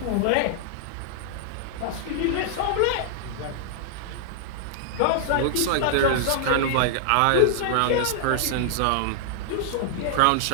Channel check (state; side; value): different; both; correlation -0.01